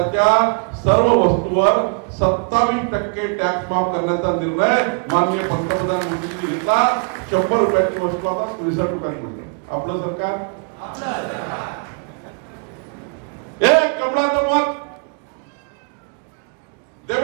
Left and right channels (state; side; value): quieter; left; 38.0 dB